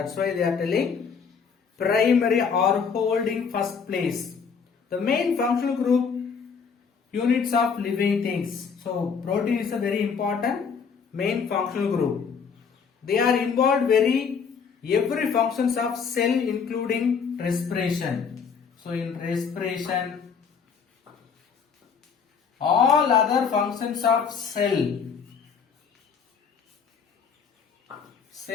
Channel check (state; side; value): quieter; right; 6.1 dB